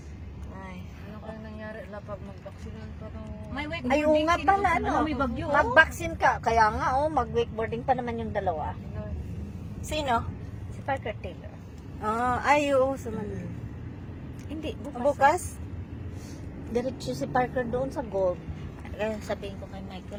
Ay. Ano kaya nangyari? Lapag mag-vaksinan pa to. May wakeboarding. Ay, oo nga pala, ano. May bagyo. Mag-vaccine ka. Kaya nga, mag-wakeboarding pa naman yung dalawa. Sino? Si Parker Taylor. Ay, oo. Sumunod. Hindi, bukas. Bukas? Diretso si Parker doon sa golf. Kaya sabihin ko kay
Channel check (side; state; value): both; identical; correlation 1.00